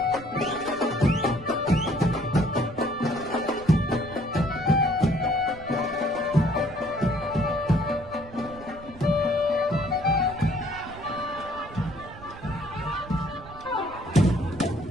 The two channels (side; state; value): right; noise; rumble, 17 dB below the sound